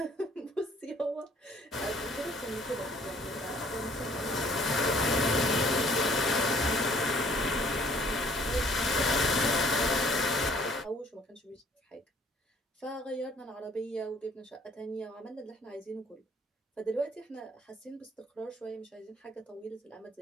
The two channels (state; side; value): normal; both; correlation 0.59